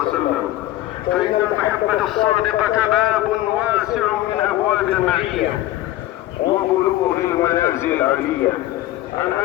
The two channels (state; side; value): quieter; right; 15.1 dB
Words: فإن المحبة الصادقة باب واسع من أبواب المعية وبلوغ المنازل العالية. عن